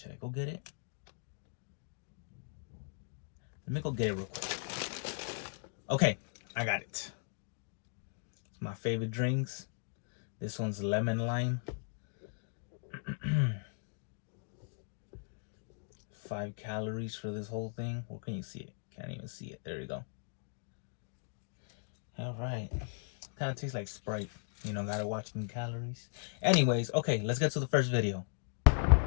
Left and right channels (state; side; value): silent; right; digital silence